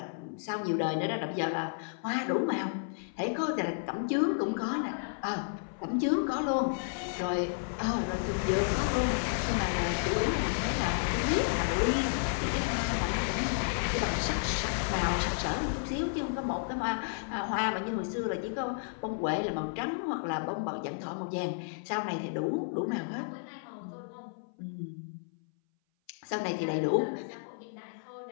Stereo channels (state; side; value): silent; right; 56 dB below the other